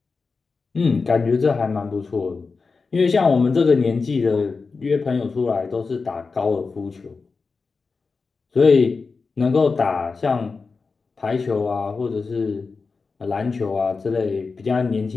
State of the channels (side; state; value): right; quieter; 4.5 dB